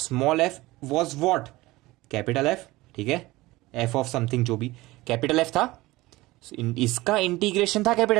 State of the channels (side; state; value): left; quieter; 19.4 dB